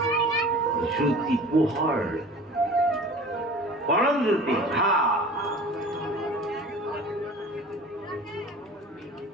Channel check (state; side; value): normal; both; correlation 0.41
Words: জ্যোতি পোহৰ, পৰম জ্যোতি ভা।